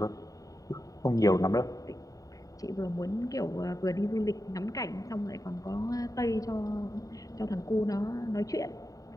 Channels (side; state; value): right; late; 0.17 ms